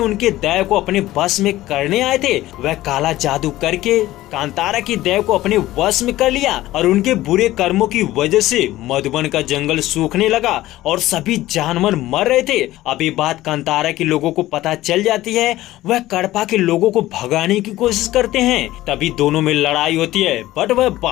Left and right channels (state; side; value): quieter; right; 16.0 dB